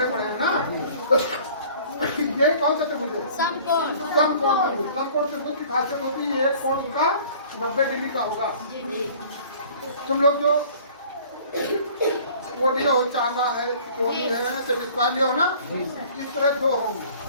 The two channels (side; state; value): both; inverted; correlation -0.50